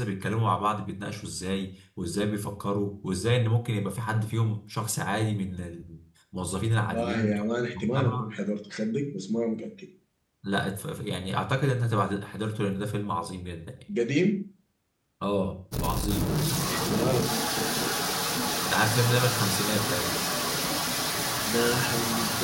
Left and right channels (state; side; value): identical; both; correlation 1.00